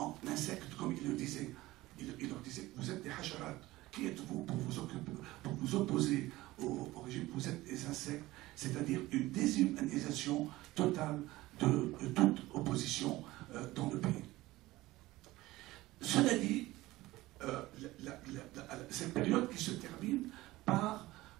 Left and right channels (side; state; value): left; quieter; 18.1 dB